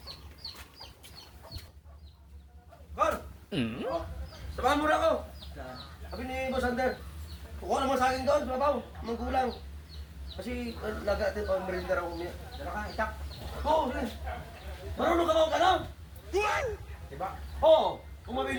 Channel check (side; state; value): both; identical; correlation 1.00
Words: Kor! O, samahan mo na ako. Sabi ni Boss Ander, kukuha naman sa akin doon, mabaw, manggulang. Kasi laga natin pang merinda raw umiyak. Dala ka, itak. Oo, sige. Marunong ka ba o gano'n? Diba? Oo. Kung